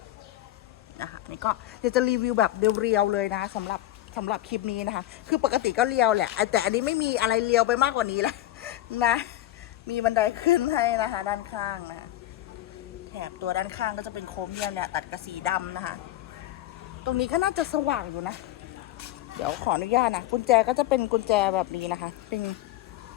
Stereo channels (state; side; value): quieter; right; 14.5 dB